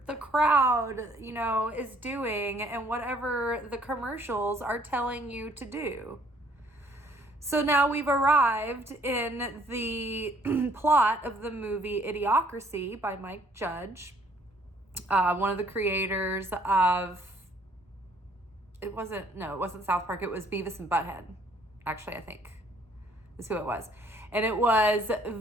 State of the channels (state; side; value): normal; both; correlation 0.61